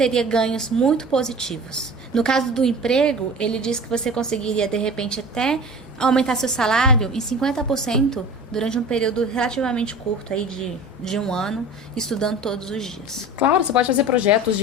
ganhos muito positivos. No caso do emprego, ele diz que você conseguiria, de repente, até aumentar seu salário em 50% durante um período relativamente curto, aí de 1 ano, estudando todos os dias. Claro, você pode fazer projetos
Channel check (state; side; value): normal; both; correlation 0.38